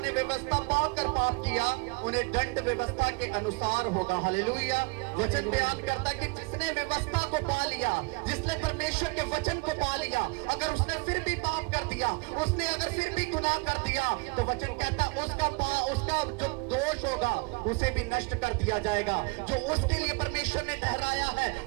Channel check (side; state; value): left; quieter; 29.6 dB